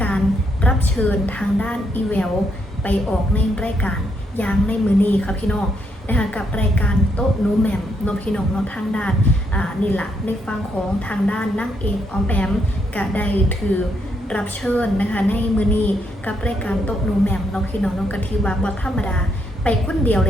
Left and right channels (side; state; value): both; normal; correlation 0.76